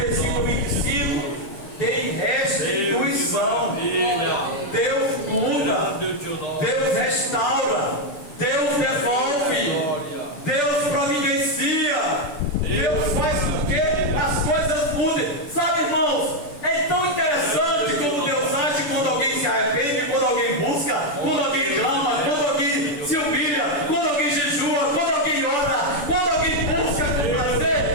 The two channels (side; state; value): right; late; 6.9 ms